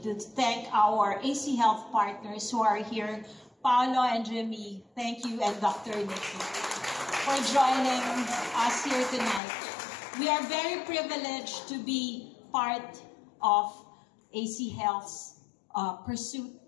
to thank our AC Health partners who are here, Paolo and Jimmy, thank you, and Dr. Nikki, for joining us here tonight. We are very privileged to be part of AC Health's pursuit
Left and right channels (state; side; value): drops out; right; at 9.4 s